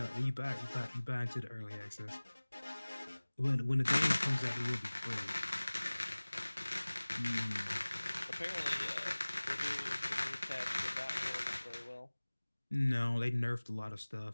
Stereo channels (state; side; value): inverted; both; correlation -1.00